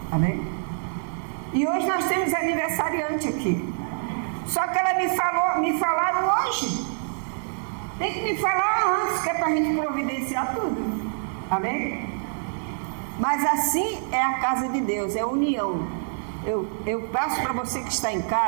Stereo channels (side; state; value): left; silent; 61 dB below the other